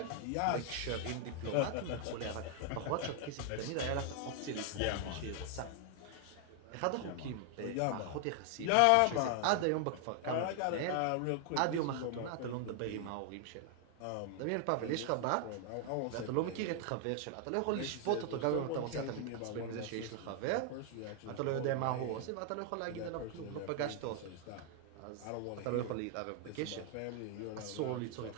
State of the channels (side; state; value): both; different; correlation 0.00